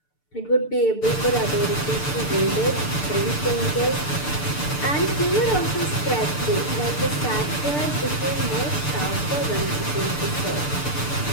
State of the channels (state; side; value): late; right; 6.8 ms